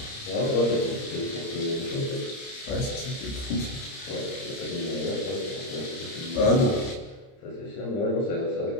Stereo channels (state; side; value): late; right; 30 ms